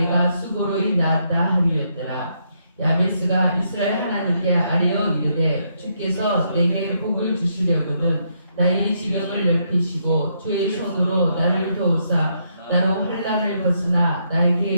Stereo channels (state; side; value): inverted; both; correlation -0.76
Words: 수고로이 낳았다 함이었더라. 야베스가 이스라엘 하나님께 아뢰어 이르되 주께서 내게 복을 주시려거든 나의 지경을 넓히시고 주의 손으로 나를 도우사 나로 환난을 벗으나